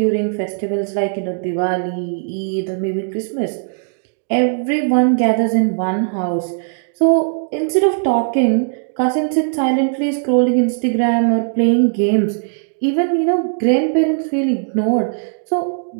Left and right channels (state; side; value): silent; left; digital silence